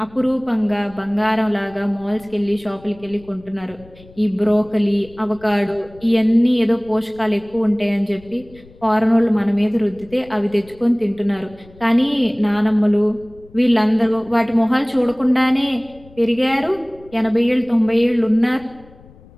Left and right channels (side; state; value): left; noise; rumble, 24 dB below the sound